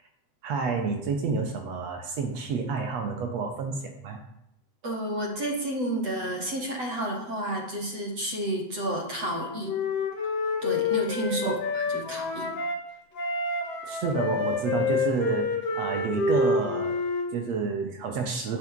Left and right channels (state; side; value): late; left; 8.0 ms